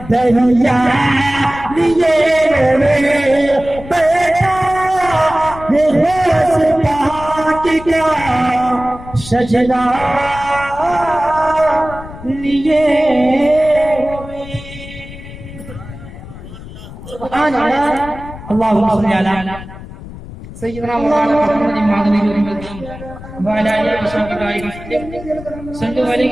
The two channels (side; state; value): left; noise; rumble, 14 dB below the sound